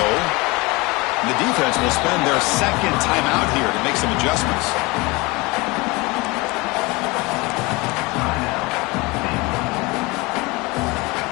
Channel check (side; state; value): right; quieter; 24.4 dB